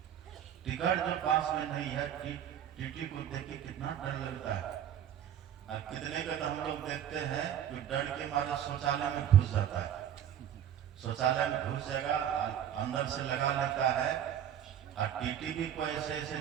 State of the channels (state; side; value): quieter; left; 9.9 dB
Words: टिकट जो पास में नहीं है, टीटी को देख के कितना डर लगता है। और कितने का तो हम लोग देखते हैं कि डर के मारे शौचालय में घुस जाता है, शौचालय में घुस जाएगा अंदर से लगा लेता है। और टीटी भी कोई ऐसे ऐसे